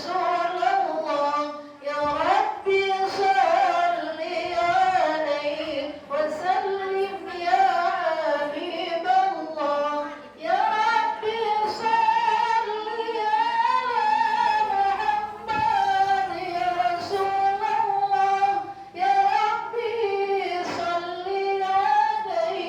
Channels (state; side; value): identical; both; correlation 1.00